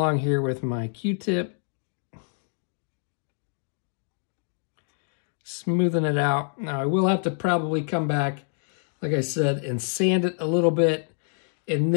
here with my Q-tip, smoothing it out. Now I will have to probably come back, like I said, and sand it a little bit, and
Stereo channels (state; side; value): silent; right; 60 dB below the other